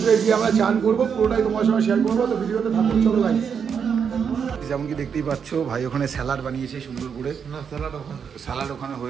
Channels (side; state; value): left; quieter; 6.9 dB